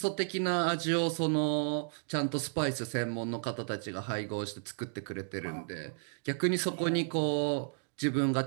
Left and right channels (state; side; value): silent; left; digital silence